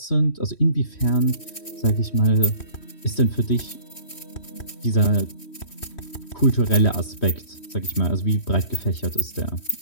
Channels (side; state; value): right; late; 3.1 ms